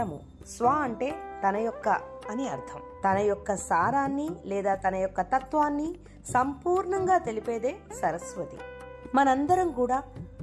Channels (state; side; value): identical; both; correlation 1.00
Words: స్వ అంటే తన యొక్క అని అర్థం. తన యొక్క సారాన్ని లేదా తన యొక్క తత్వాన్ని సంపూర్ణంగా తెలిపేదే సరస్వతి. మనందరం కూడా